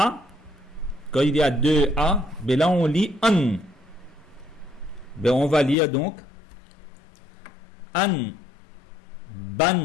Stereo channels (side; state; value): right; drops out; at 5.8 s